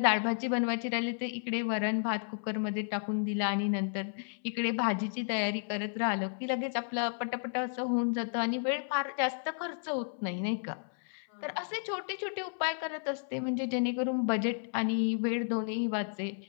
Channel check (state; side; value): silent; right; 56 dB below the other